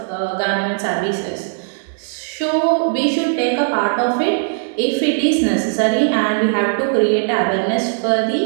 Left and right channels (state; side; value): silent; left; 67 dB below the other